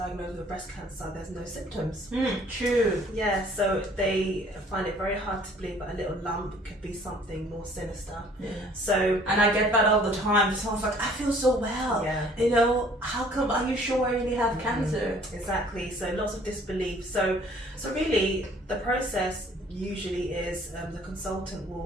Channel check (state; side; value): normal; both; correlation 0.56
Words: with breast cancer, there's no symptoms. True. Yeah, so they find it very hard to believe that a little lump could be something more sinister. Yeah. So, and I get that all the time. Someone's like, I feel so well. Yeah. You know, how come? Are you sure I really have cancer? Exactly. So lots of disbelief. So really, the process usually is the consultant